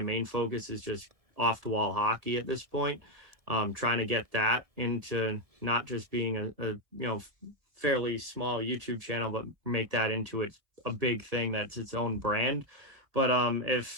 main focus is just off the wall hockey at this point. Trying to get that into not just being a fairly small YouTube channel, but make that into a big thing that's its own brand. But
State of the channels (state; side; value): late; left; 1.6 ms